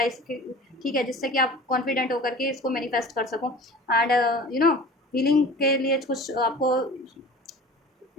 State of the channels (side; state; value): both; normal; correlation 0.41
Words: इसके, ठीक है, जिससे कि आप कॉन्फिडेंट होकर के इसको मैनिफेस्ट कर सको। एंड हीलिंग के लिए कुछ आपको